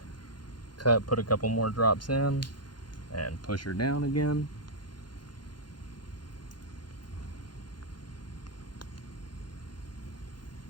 Put a couple more drops in and push her down again.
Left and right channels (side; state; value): right; late; 0.71 ms